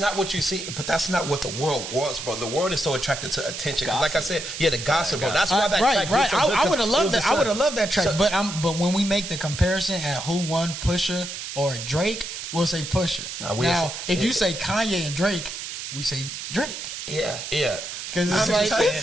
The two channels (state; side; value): noise; right; hiss, 8 dB below the sound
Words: what you see, but that's not what the world wants, bro. The world is so attracted to attention. Because like I said, the gossip, bro. That's why that track. Right. I would have loved that. I would have loved that track. But when we make the comparison at who won, Pusha or Drake, we'll say Pusha. Now, if you say Kanye and Drake, we say Drake. Yeah. Because it's